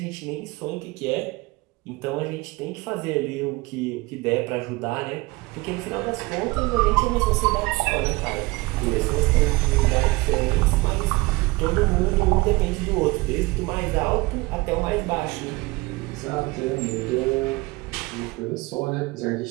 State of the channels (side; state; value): left; quieter; 23.1 dB